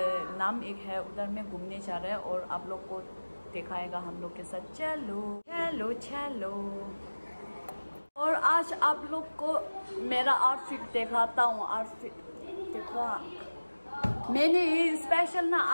नाम एक है, उधर में घूमने जा रहे हैं और आप लोग को दिखाएगा हम लोग के साथ। चलो चलो चलो। और आज आप लोग को मेरा आउटफिट दिखाता हूँ। आउटफिट देखो, मैंने ये स्पेशल ना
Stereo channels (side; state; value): both; inverted; correlation -1.00